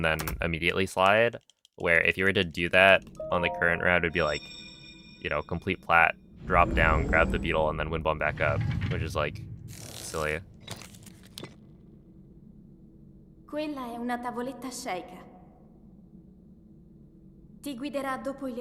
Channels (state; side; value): identical; both; correlation 1.00